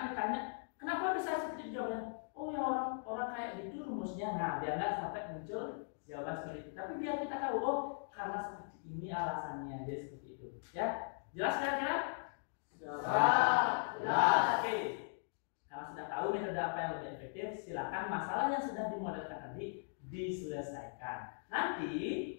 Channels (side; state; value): right; silent; digital silence